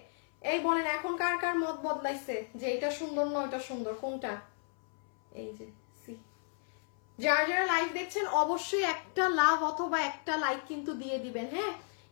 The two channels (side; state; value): right; silent; 56 dB below the other